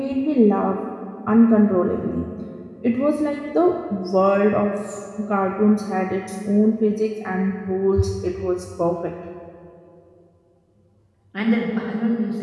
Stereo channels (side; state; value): both; identical; correlation 1.00